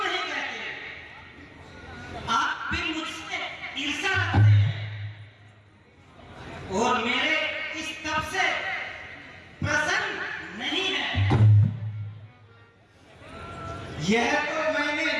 कहते? आप भी मुझसे ईर्ष्या रखते हैं और मेरे इस तप से प्रसन्न नहीं है। यह तो मैंने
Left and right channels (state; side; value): identical; both; correlation 1.00